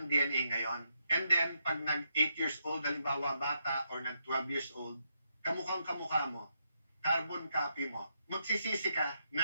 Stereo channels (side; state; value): both; inverted; correlation -0.80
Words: DNA ngayon. And then, pag nag-8 years old, halimbawa bata, or nag-12 years old, kamukhang kamukha mo, carbon copy mo, magsisisi ka